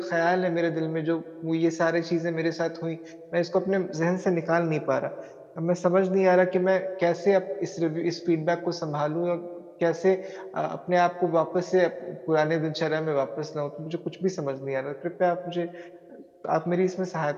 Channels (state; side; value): identical; both; correlation 1.00